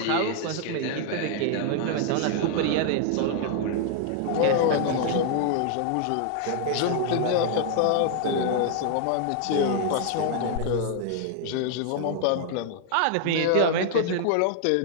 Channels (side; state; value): both; different; correlation 0.00